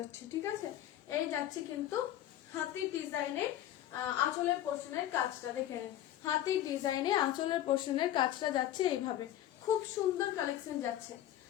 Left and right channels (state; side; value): quieter; right; 12.6 dB